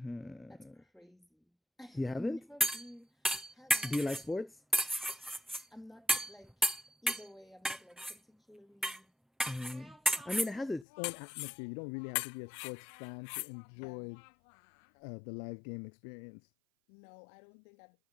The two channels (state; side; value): drops out; right; at 10.9 s